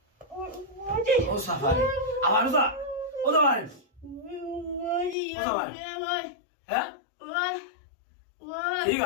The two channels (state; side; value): drops out; right; at 5.2 s